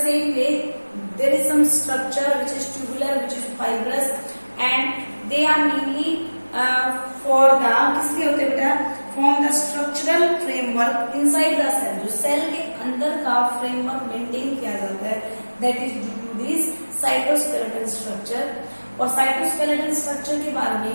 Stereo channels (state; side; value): inverted; both; correlation -1.00